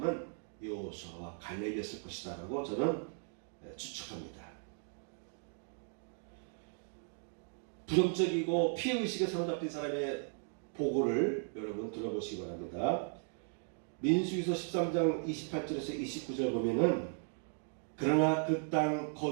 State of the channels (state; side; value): silent; left; 53 dB below the other